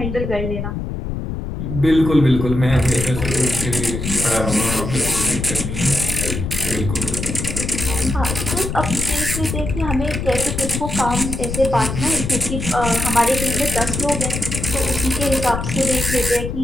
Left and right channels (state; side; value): noise; left; rumble, 4 dB below the sound